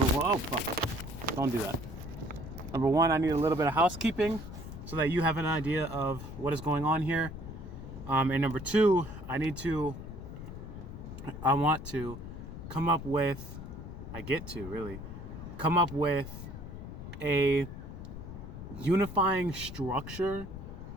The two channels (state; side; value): noise; left; rumble, 10 dB below the sound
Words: one, oh fuck, don't do that. Number one, I need a little bit of housekeeping so that you have an idea of what is going on here. And number two, I want to come up with, I get to really come up with a unifying structure